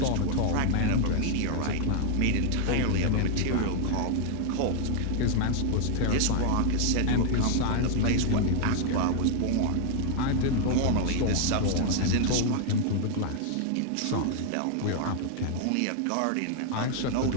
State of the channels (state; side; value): different; both; correlation 0.00